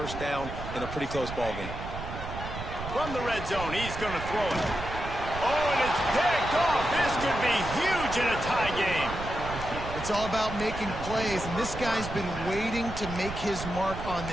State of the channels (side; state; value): right; noise; rumble, 8 dB below the sound